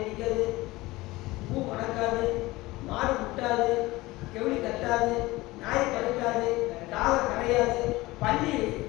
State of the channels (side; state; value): right; quieter; 19.9 dB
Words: அடிக்காது, பூ மணக்காது, மாடு முட்டாது, கெவுளி கட்டாது, நாய் பறக்காது, காலை கரையாது, பள்ளி